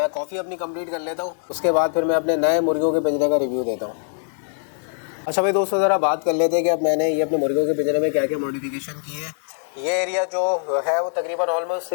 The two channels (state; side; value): silent; right; 58 dB below the other